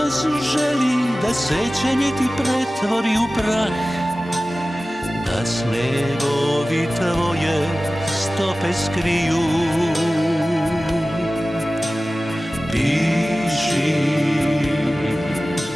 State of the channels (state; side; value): normal; both; correlation 0.96